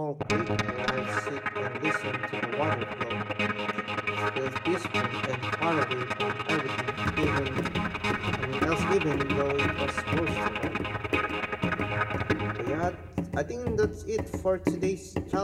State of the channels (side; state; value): both; identical; correlation 1.00